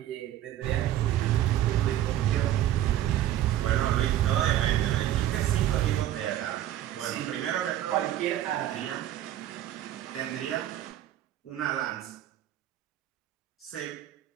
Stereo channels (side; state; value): left; quieter; 12.5 dB